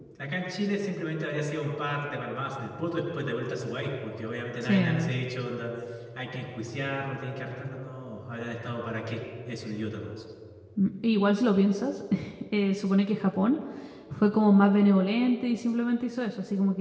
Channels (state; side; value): identical; both; correlation 1.00